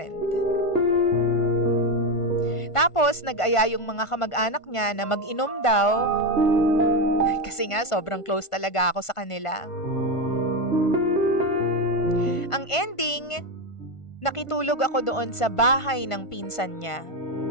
Tapos nag-aya yung mga kamag-anak niya na mag-inom daw. Kasi nga, sobrang close talaga ako sa kanila. Ang ending, nakitulog ako doon sa bahay ng pinsan niya.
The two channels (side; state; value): right; late; 1.5 ms